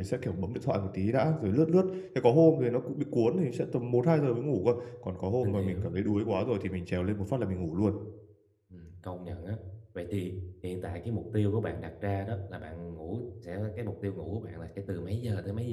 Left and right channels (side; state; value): both; identical; correlation 1.00